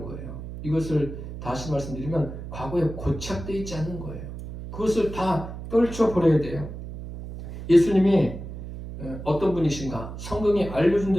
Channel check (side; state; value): right; noise; hum, 10 dB below the sound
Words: 거예요. 이것을 다시 말씀드리면 과거에 고착되어 있지 않는 거예요. 그것을 다 떨쳐버려야 돼요. 예수님이 어떤 분이신가? 성경이 알려준